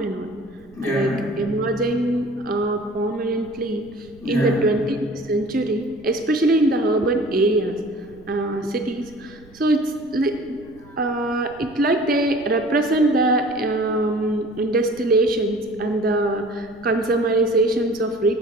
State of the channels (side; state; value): right; noise; rumble, 25 dB below the sound